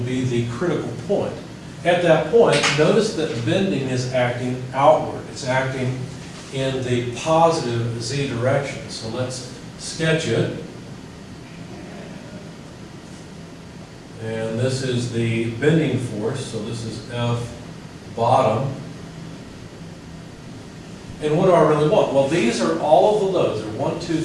be the critical point. At that point, notice that bending is acting outward. It's acting in the positive Z direction. So let's sketch it. And this is the bending force, so this is F bottom. And what do I really want? Well, these are all of the loads. There are 1, 2,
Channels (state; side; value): identical; both; correlation 1.00